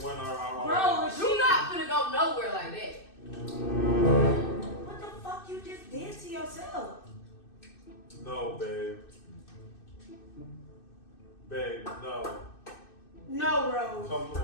went our own. Bro, You not finna go nowhere like that. what the fuck you just did to yourself? No, babe. Babe, no. No, Rose. Come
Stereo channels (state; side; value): late; right; 2.6 ms